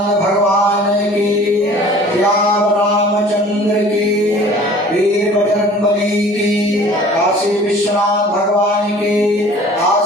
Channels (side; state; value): both; normal; correlation 0.47